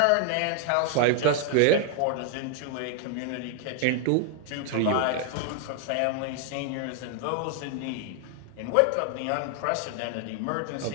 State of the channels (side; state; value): both; different; correlation 0.00